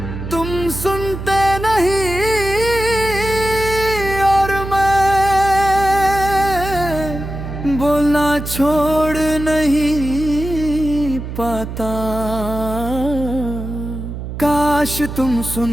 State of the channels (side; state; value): right; noise; hum, 8 dB below the sound